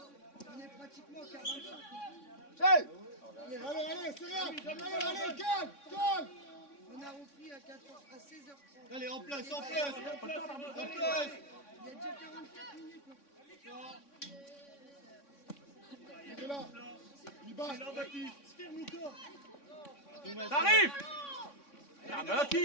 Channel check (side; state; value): right; late; 3.6 ms